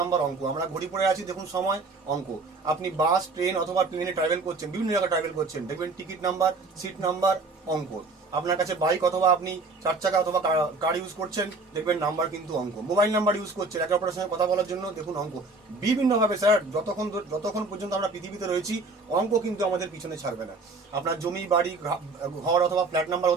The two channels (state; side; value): quieter; left; 3.6 dB